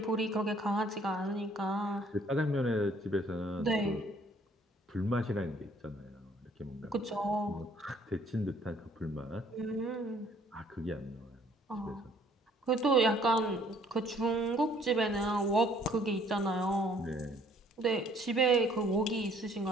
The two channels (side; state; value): both; normal; correlation 0.60